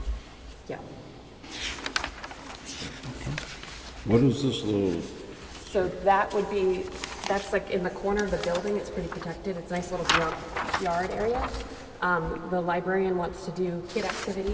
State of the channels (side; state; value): both; identical; correlation 1.00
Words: Yeah, What is this little, so that would be, that's like in the corner of the building, it's pretty protected, it's a nice little yard area. The librarian wants to do kid